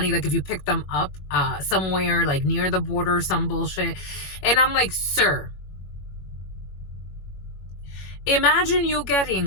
Like, if you pick them up somewhere like near the border, some bullshit. And I'm like, sir, imagine you getting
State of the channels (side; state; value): right; late; 21 ms